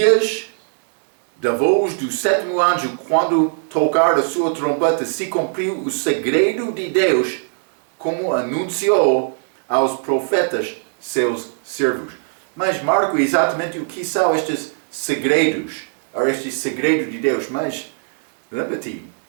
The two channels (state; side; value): silent; left; digital silence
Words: da voz do sétimo anjo, quando tocar a sua trombeta, se cumpriu o segredo de Deus, como anunciou aos profetas, seus servos. Mas Marco, exatamente o que são estes segredos, ou este segredo de Deus? Mas, lembra-te,